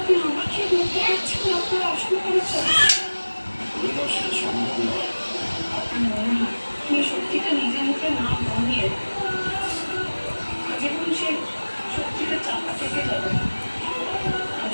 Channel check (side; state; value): both; inverted; correlation -1.00